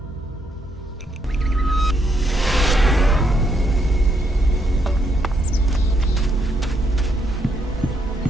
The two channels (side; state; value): both; normal; correlation 0.75